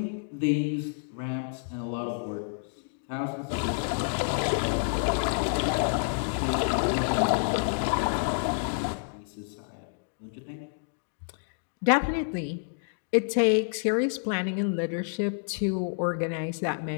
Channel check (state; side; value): silent; right; digital silence